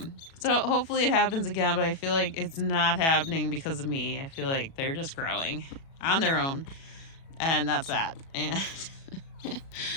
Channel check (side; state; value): right; late; 36 ms